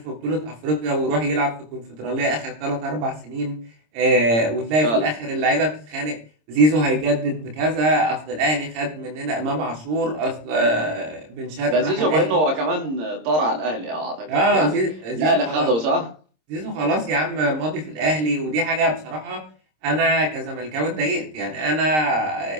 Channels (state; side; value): late; left; 26 ms